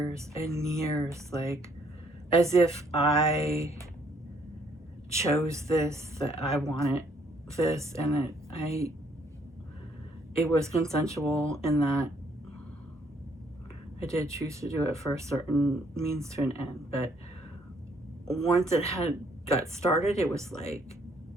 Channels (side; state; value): both; normal; correlation 0.67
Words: and years, like, as if I chose this, that I wanted this, and that it was consensual in that I did choose to do it for a certain means to an end. But once it had got started, it was like,